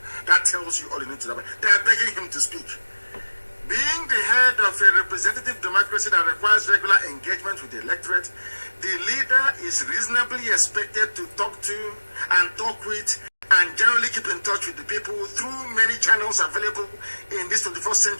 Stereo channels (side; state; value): both; inverted; correlation -1.00